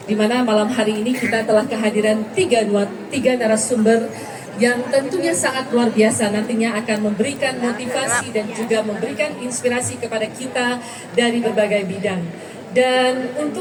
di mana malam hari ini kita telah kehadiran tiga narasumber yang tentunya sangat luar biasa, nantinya akan memberikan motivasi dan juga memberikan inspirasi kepada kita dari berbagai bidang. Dan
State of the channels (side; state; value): both; identical; correlation 1.00